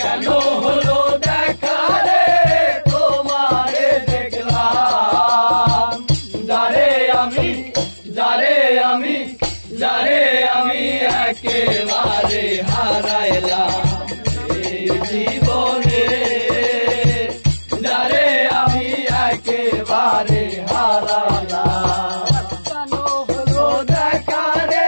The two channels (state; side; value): inverted; both; correlation -1.00